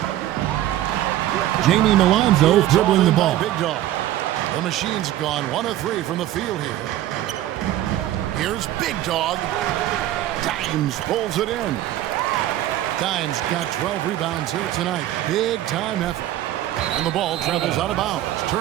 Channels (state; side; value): quieter; left; 13.4 dB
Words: Jamie Milonzo dribbling the ball. Big Dog. The machine's gone 1 of 3 from the field here. Here's Big Dog. Dimes pulls it in. Dimes got 12 rebounds here tonight. Big time effort. And the ball travels out of bounds.